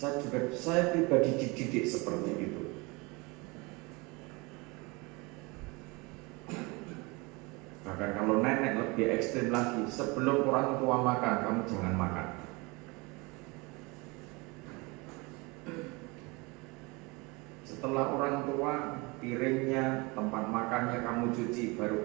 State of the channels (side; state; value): left; quieter; 26.4 dB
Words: Saya pribadi dididik seperti itu. Bahkan kalau nenek lebih ekstrim lagi, sebelum orang tua makan, kamu jangan makan. Setelah orang tua, piringnya, tempat makannya kamu cuci, baru